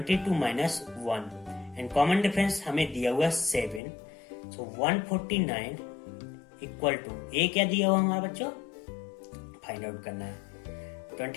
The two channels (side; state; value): right; drops out; at 3.8 s